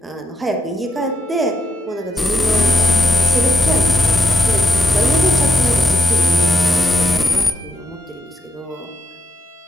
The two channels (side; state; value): both; normal; correlation 0.83